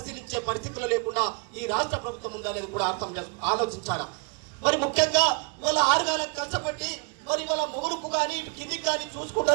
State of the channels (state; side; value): quieter; left; 33.9 dB